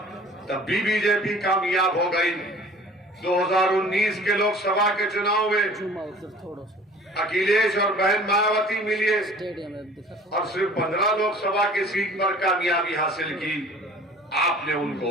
तब भी बीजेपी कामयाब हो गई। 2019 के लोकसभा के चुनाव में अखिलेश और बहन मायावती मिले और सिर्फ 15 लोकसभा की सीट पर कामयाबी हासिल की, आपने उनको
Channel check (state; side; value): normal; both; correlation 0.47